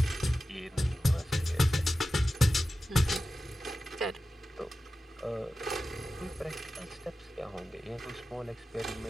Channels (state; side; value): normal; both; correlation 0.94